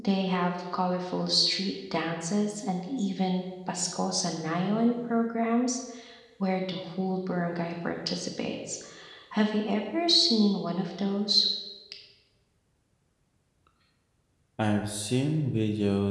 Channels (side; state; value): both; identical; correlation 1.00